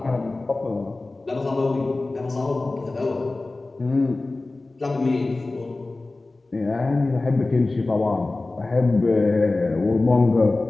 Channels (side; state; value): right; quieter; 3.2 dB